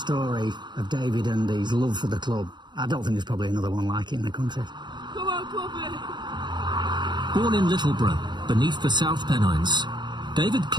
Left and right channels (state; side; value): late; left; 0.22 ms